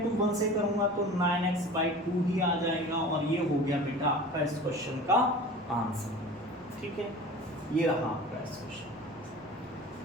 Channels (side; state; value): right; noise; rumble, 27 dB below the sound